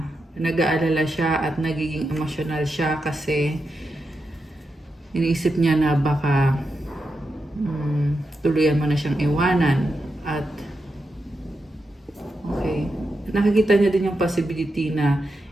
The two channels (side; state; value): both; normal; correlation 0.87